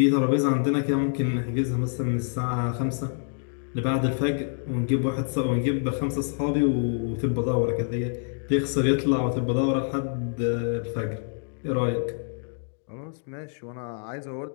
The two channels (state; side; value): silent; right; digital silence